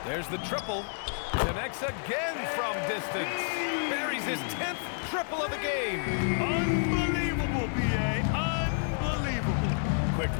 There's the triple. Connects again from distance. Buries his 10th triple of the game. Unbelievable, B.A. Unbelievable.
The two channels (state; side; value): silent; right; digital silence